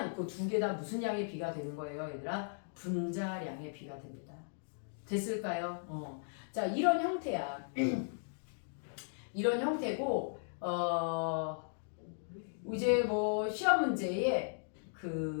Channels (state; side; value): silent; right; digital silence